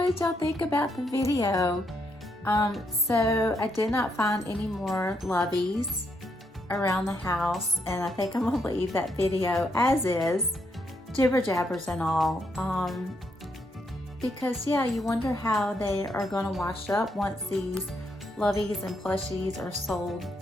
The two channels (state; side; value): normal; both; correlation 0.77